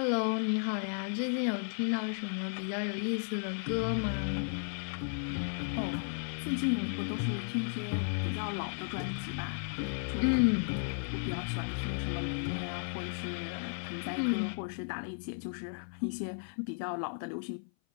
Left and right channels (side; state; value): right; silent; 55 dB below the other